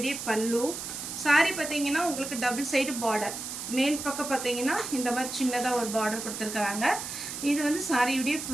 பல்லு சாரி பாத்தீங்கன்னா உங்களுக்கு டபுள் சைடு border மேல் பக்கம் பாத்தீங்கன்னா இந்த மாதிரி சின்னதா ஒரு border கொடுத்திருக்காங்க இது வந்து சாரியோட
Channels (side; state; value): right; noise; hiss, 7 dB below the sound